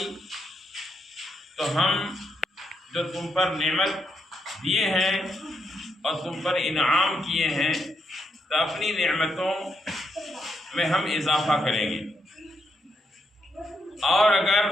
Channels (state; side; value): normal; both; correlation 0.80